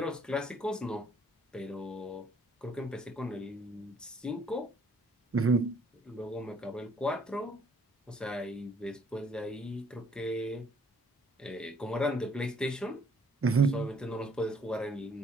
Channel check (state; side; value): normal; both; correlation 0.63